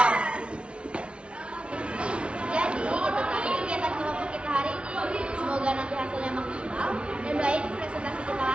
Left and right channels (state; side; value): late; left; 0.058 ms